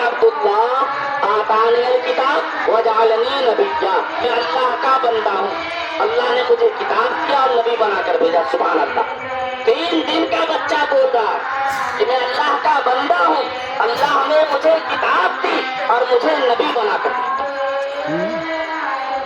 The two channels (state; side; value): identical; both; correlation 1.00